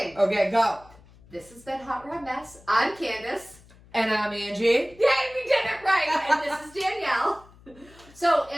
Okay, go. This has been Hot Rod Mess. I'm Candice. And I'm Angie. Yay, we did it right. And this is Danielle. So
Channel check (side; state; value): left; noise; hum, 25 dB below the sound